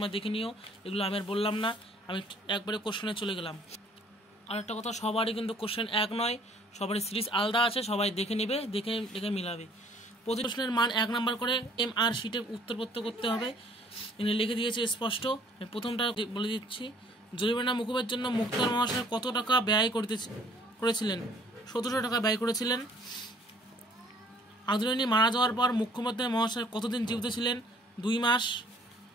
দেখে নিও। এগুলো আমি আর বললাম না, আমি একবারে কোশ্চেনে চলে গেলাম। আর একটা কথা, সবারই কিন্তু কোশ্চেন এক নয়, সবারই সিরিজ আলাদা আছে, সবাই দেখে নেবে, দেখে মিলাবে। প্রতি প্রশ্নের মান 1 নাম্বার করে MR শিটে উত্তরপত্র করতে হবে। এখানে লিখে দিয়েছে স্পষ্ট। প্রথমটা বলে দিচ্ছি, জরিমানা মুকুবের জন্য মুক্তার মহাশয় কত টাকা ব্যয় করেছিলেন? 1700 টাকা ব্যয় করেছিলেন। আদরিণী মারা যাওয়ার পর মুখ্যমন্ত্রী মহাশয় কতদিন জীবিত ছিলেন? 2 মাস।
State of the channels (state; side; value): normal; both; correlation 0.58